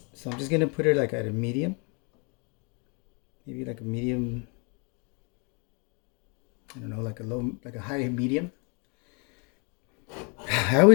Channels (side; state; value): right; quieter; 34.1 dB